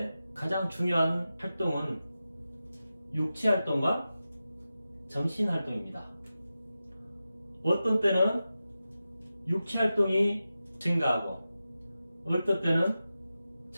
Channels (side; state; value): both; inverted; correlation -0.93